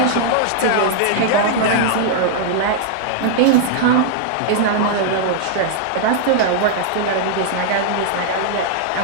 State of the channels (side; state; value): both; different; correlation -0.01